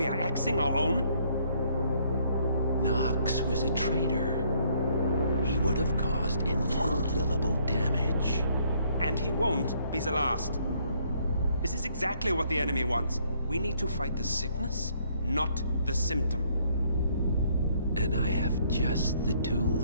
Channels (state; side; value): inverted; both; correlation -0.67